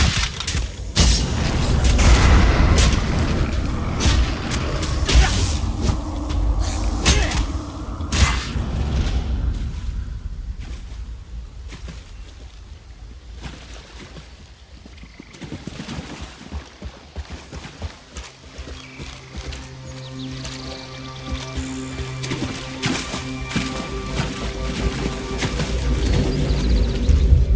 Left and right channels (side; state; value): both; identical; correlation 1.00